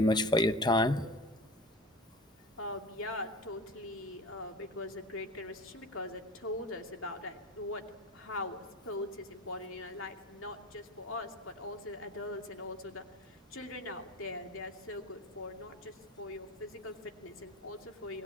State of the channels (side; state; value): both; normal; correlation 0.35